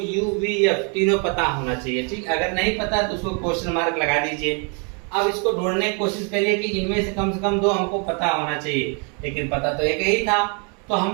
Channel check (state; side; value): quieter; left; 36.5 dB